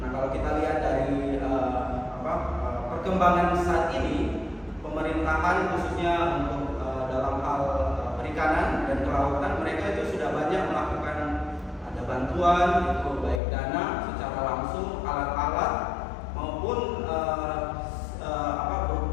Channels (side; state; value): right; drops out; at 13.4 s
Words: Nah kalau kita lihat dari perkembangan saat ini, pemerintahan khususnya untuk dalam hal perikanan dan kelautan, mereka itu sudah banyak melakukan ada bantuan itu baik dana secara langsung, alat-alat maupun